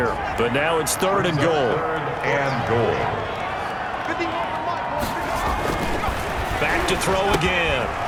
But now it's 3rd and goal. 3rd and goal. Back to throw again.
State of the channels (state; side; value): identical; both; correlation 1.00